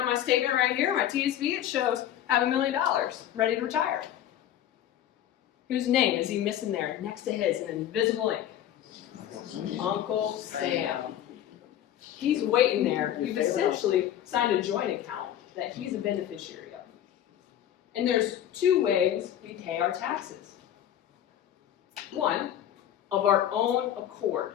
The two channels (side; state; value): right; quieter; 11.2 dB